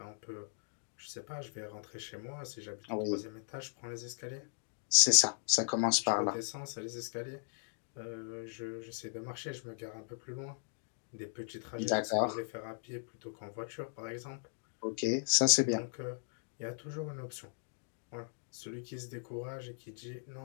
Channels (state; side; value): silent; right; digital silence